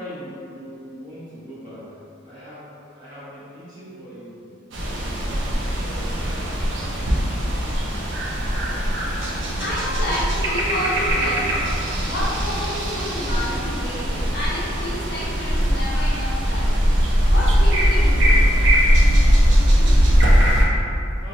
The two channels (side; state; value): both; normal; correlation 0.81